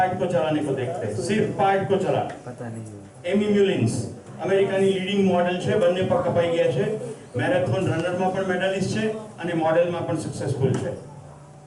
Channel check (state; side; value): identical; both; correlation 1.00